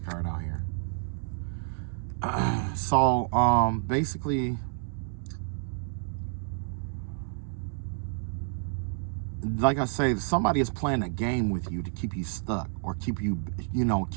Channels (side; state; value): left; silent; digital silence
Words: out here. So, basically, like I say, somebody is playing a game with you to keep you stuck or keep you,